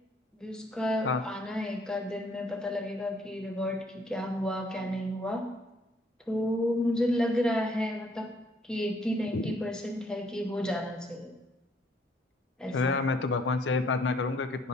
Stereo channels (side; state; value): both; normal; correlation 0.65